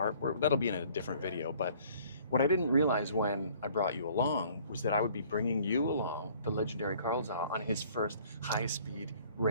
That'll be in a different video, but what I didn't realize when I brought you along was that I would be bringing you along, the legendary Carl Zha, on his first high-speed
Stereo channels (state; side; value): inverted; both; correlation -0.55